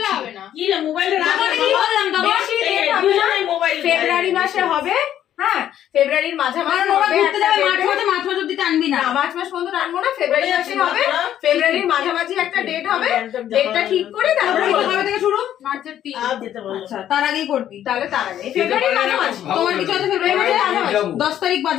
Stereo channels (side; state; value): right; quieter; 11.1 dB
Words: ফেব্রুয়ারি মাসে হবে, হ্যাঁ ফেব্রুয়ারির মাঝামাঝি না মার্চ মাস পর্যন্ত টানবো না, ফেব্রুয়ারি মাসে হবে, ফেব্রুয়ারির মাঝামাঝি একটা ডেট হবে, ডেটটা ঠিক করে তারপরে কবে থেকে শুরু? মার্চের 3। আচ্ছা তার আগেই করবি, তাহলে তার আগে ফেব্রুয়ারির মাঝামাঝি। তোমার কিছু আছে ফেব্রুয়ারি মাসে মাঝামাঝি 10 তারিখ